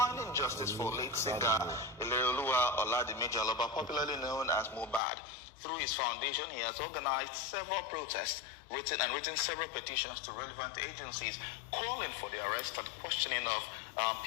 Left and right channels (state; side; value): drops out; right; at 5.0 s